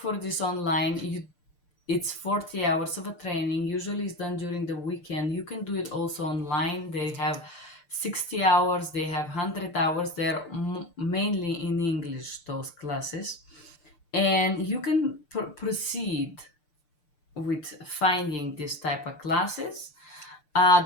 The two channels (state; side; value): late; right; 6.7 ms